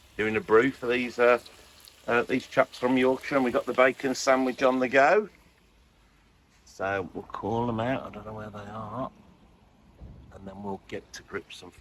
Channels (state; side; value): identical; both; correlation 1.00